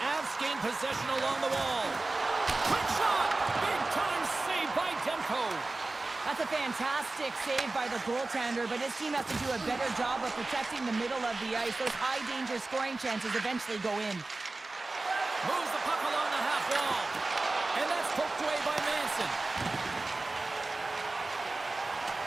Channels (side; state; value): left; quieter; 3.2 dB